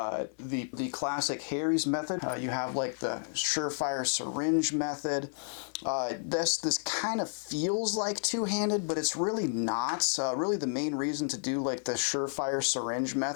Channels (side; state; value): right; silent; 57 dB below the other